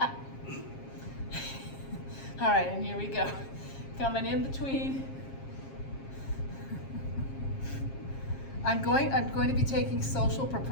right, and here we go. Coming in between. I'm going to be taking social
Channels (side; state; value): right; late; 7.4 ms